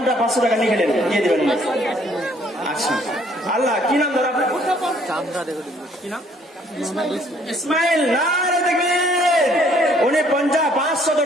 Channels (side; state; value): both; normal; correlation 0.62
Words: 500 টাকা নিয়ে গেলেন, দিয়ে দেবেন। আচ্ছা আল্লাহ কি নাম দাদা আপনার? কি নাম? ইসমাইল। নারে তাকবীর। উনি 500